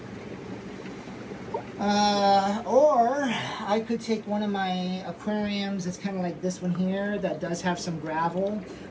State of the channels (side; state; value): both; identical; correlation 1.00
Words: Or I could take one of my aquariums. It's kind of like this one here that does have some gravel,